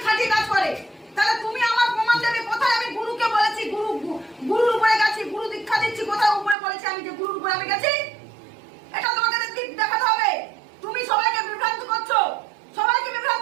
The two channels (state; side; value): drops out; left; at 6.6 s